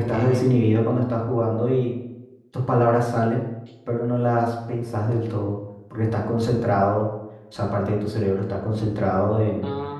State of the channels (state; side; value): identical; both; correlation 1.00